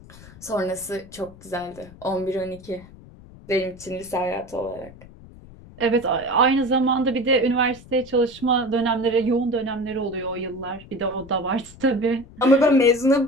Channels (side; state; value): left; noise; rumble, 20 dB below the sound